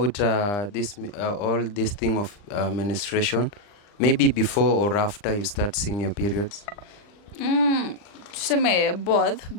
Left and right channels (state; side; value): late; right; 39 ms